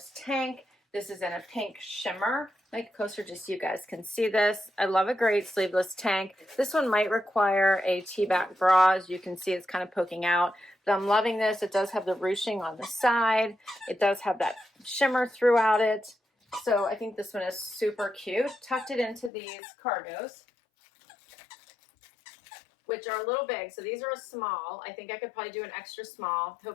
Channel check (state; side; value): drops out; right; at 19.3 s